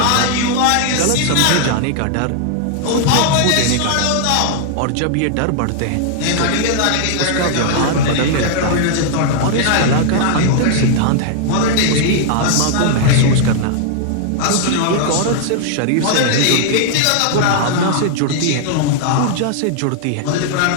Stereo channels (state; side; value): different; both; correlation -0.01